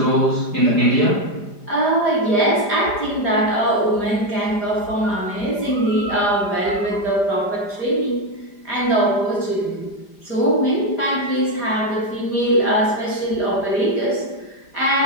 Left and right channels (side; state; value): right; late; 5.0 ms